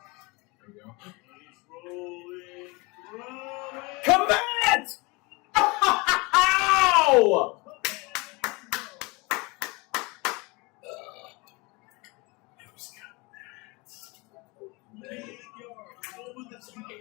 There we go. He's rolling, throwing. Commit! Ow!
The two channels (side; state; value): right; quieter; 26.6 dB